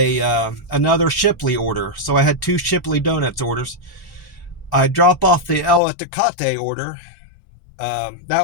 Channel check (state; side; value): drops out; right; at 5.8 s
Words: Shipley order. So I had two Shipley Donuts orders. I drop off the El Itacate order.